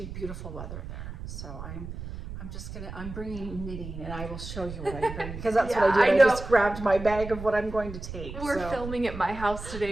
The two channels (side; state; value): right; noise; rumble, 10 dB below the sound